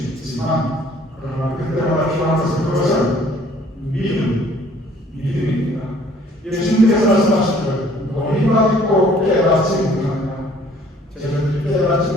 있지만 그러나 그때마다 필요한 것은 그것은 믿음입니다. 예수님께서 말씀하시기를 너희가 믿고 깨닫지 못하느냐 제자들이 깨닫지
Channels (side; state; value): both; normal; correlation 0.57